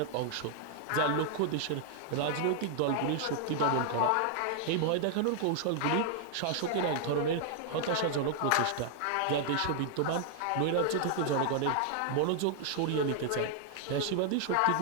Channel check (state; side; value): different; both; correlation 0.00